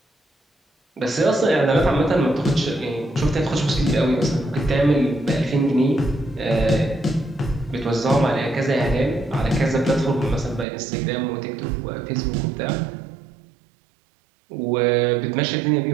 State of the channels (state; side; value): drops out; left; at 10.7 s